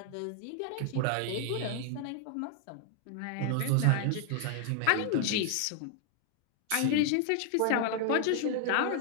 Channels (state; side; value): different; both; correlation 0.00